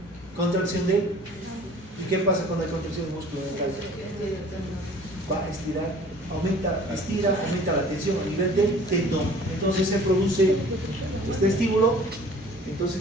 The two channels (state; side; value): normal; both; correlation 0.49